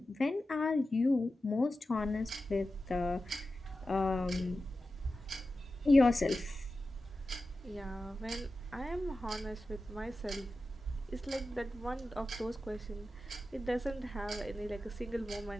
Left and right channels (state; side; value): normal; both; correlation 0.93